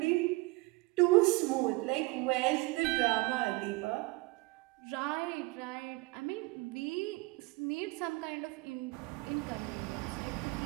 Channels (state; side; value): quieter; left; 23.2 dB